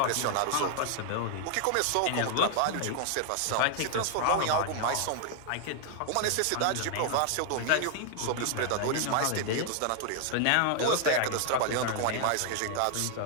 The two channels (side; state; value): both; different; correlation 0.00